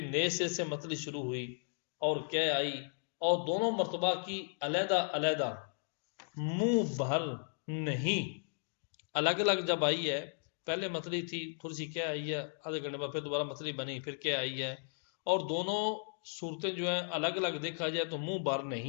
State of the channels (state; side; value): silent; right; digital silence